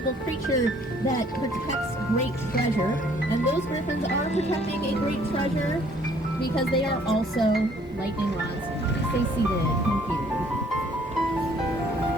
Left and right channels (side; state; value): both; normal; correlation 0.60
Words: creature that protects great treasure. And those griffins are protecting a great treasure because they are also lightning rods. Stay seated. Thank you.